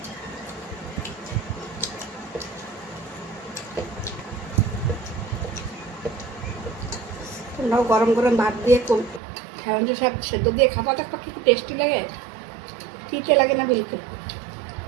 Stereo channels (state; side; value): drops out; left; at 9.2 s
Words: তোমরাও গরম গরম ভাত দিয়ে হেলাঞ্চি শাক সেদ্ধ দিয়ে খাবা, দেখো কি টেস্টি লাগে। তিতে লাগে না বিলকুল।